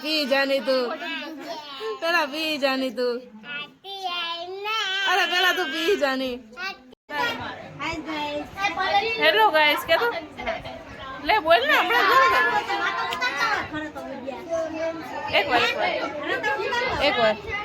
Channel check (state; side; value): identical; both; correlation 1.00